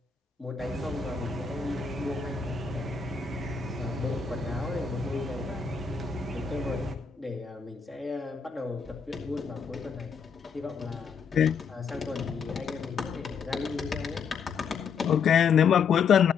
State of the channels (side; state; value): right; quieter; 6.0 dB